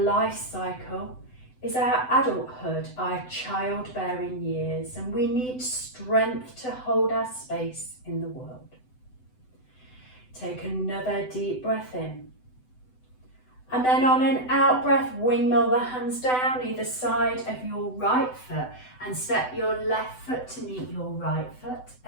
cycle is our adulthood, our childbearing years, and we need strength to hold our space in the world. Take another deep breath in. And then on an out breath, windmill the hands down either side of your right foot and step your left foot to meet your right foot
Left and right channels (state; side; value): late; right; 7.9 ms